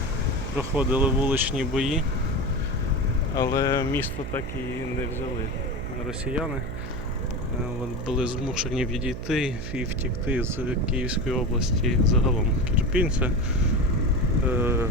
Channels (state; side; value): noise; right; hum, 9 dB below the sound